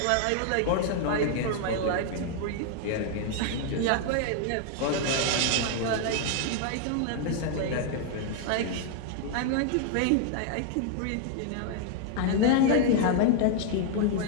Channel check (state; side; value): different; both; correlation 0.00